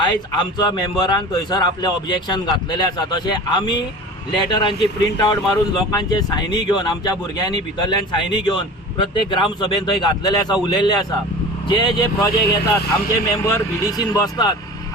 आमच्या मेंबरान थंयसर आपले ऑब्जेक्शन घातलेले आसा. तशें आमी लेटरांची प्रिंट आउट मारून लोकांचे सायनी घेवन आमच्या भुरग्यांनी भितरल्यान सायनी घेवन प्रत्येक ग्रामसभेन थंय घातलेले आसा, उलयल्ले आसा. जे प्रोजेक्ट येतात आमचे मेंबर VDCन बसतात.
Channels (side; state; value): both; normal; correlation 0.37